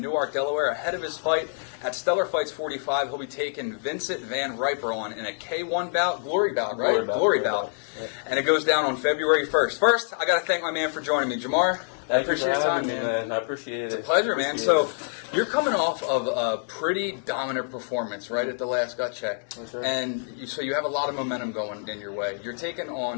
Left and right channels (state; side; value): silent; right; 61 dB below the other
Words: Delaware, ahead of his fight at Stellar Fights 45. He'll be taking Vincent VanRiper on in a K1 bout, glory bout, right? Glory bout. Yeah. And it goes down on February 1st. First, I got to thank my man for joining me. Jamar, I appreciate your time, man. I appreciate it. It's a pleasure, man. So, you're coming off of a pretty dominant performance right at the last gut check. That's right. And so you have a lot of momentum going in your way. You're taking